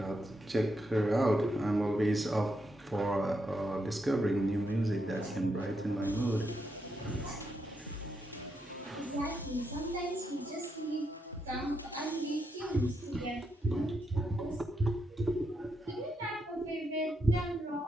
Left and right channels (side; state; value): both; normal; correlation 0.82